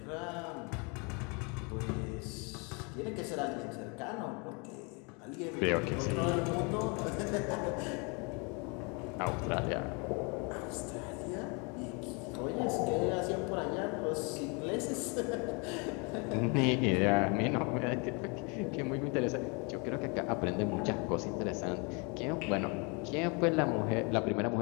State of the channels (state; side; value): quieter; right; 32.2 dB